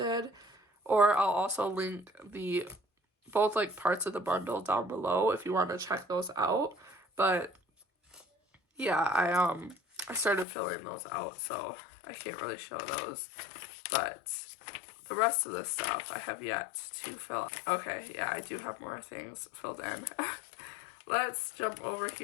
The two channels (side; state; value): right; drops out; at 10.5 s